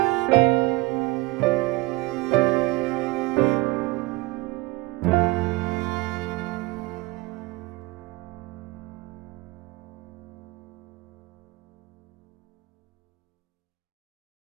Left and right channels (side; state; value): left; quieter; 22.5 dB